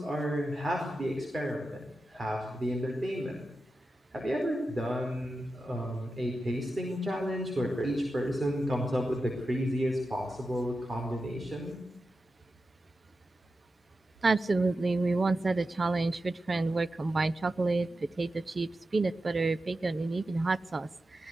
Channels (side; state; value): both; normal; correlation 0.91